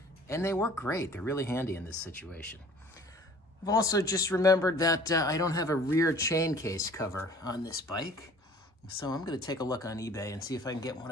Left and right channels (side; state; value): both; normal; correlation 0.50